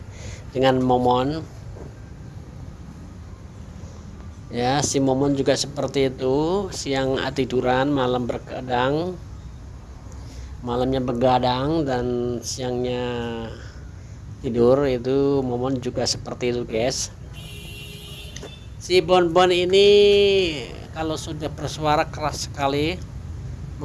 dengan Momon ya. Si Momon juga seperti itu, siang tiduran, malam begadang, malamnya begadang dan siangnya tidur. Itu Momon juga seperti itu guys. Si Bonbon ini kalau sudah bersuara keras sekali,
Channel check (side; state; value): both; identical; correlation 1.00